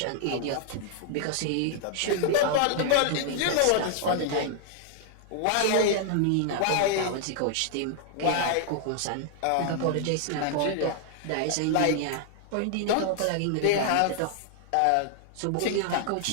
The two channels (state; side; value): different; both; correlation -0.01